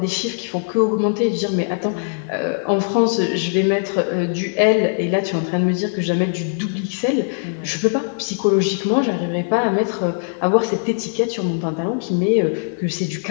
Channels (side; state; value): right; silent; digital silence